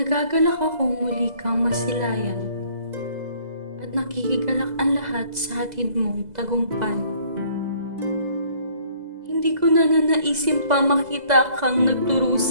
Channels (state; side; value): late; left; 2.0 ms